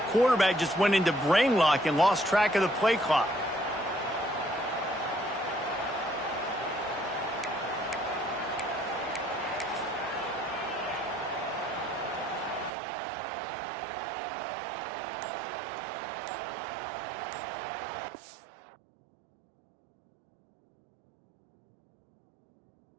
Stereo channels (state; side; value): drops out; left; at 12.7 s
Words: quarterback just went into brain lock and lost track of the play clock.